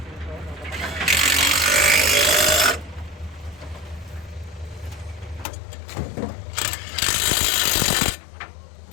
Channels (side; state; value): right; drops out; at 5.5 s